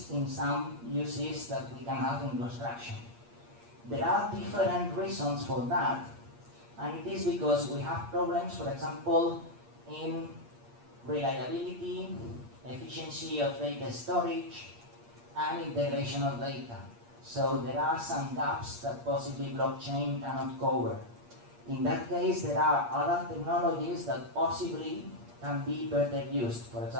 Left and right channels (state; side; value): late; left; 8.5 ms